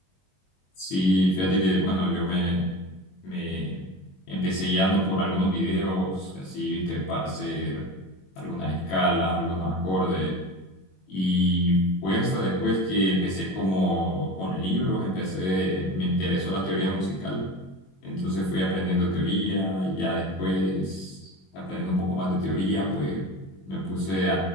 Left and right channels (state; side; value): late; right; 21 ms